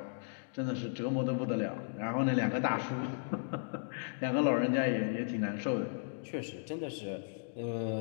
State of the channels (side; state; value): right; silent; digital silence